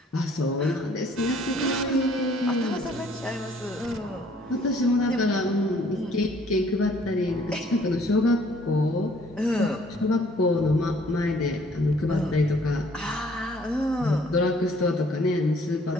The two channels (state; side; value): normal; both; correlation 0.59